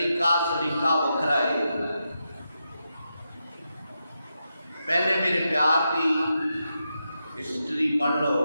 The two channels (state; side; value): inverted; both; correlation -0.86